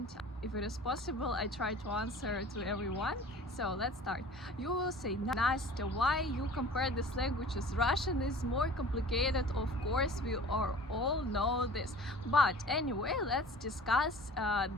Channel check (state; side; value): normal; both; correlation 0.44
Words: If it is possible, I try to answer to everyone. So let's start. You will say, Nastya, why you compare these languages? Russian is more complicated, of course, we all know this. But anyway, let's discuss